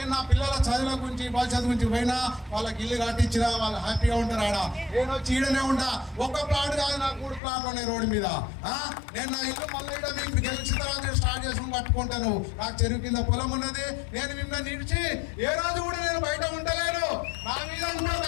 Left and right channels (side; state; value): right; drops out; at 7.4 s